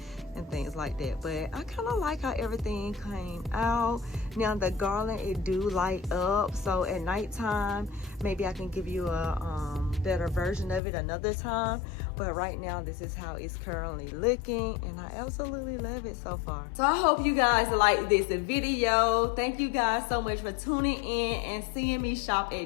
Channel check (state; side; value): drops out; right; at 10.8 s